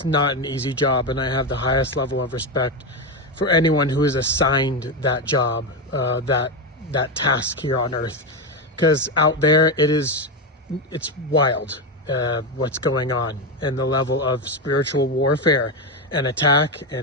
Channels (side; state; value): both; normal; correlation 0.11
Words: not an easy job, and I have the highest level of respect for anyone who is assigned that job, that task here on earth, because out there it's wild what's going on, and the level of spiritual warfare and attack